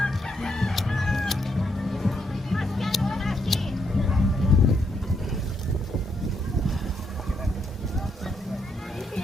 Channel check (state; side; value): normal; both; correlation 0.77